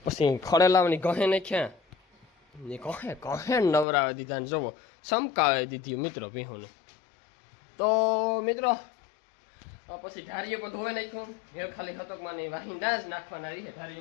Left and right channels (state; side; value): drops out; right; at 3.9 s